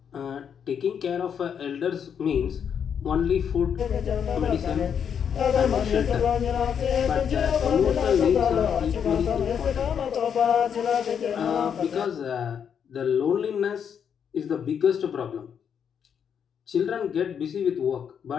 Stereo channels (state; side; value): quieter; right; 7.7 dB